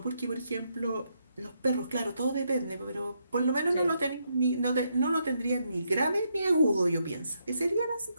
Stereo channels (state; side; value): inverted; both; correlation -0.78